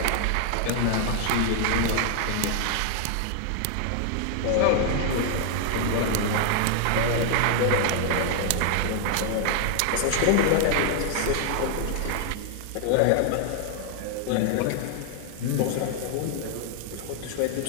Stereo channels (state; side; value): different; both; correlation 0.00